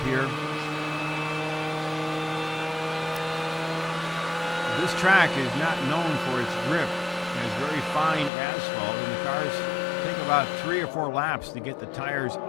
here. This track is not known for its grip. It has very fine asphalt, and the cars take about 3 or 4 laps to get the tires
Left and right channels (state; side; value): drops out; right; at 8.3 s